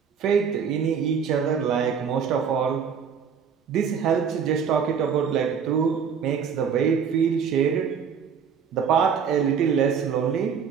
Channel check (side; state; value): left; quieter; 6.9 dB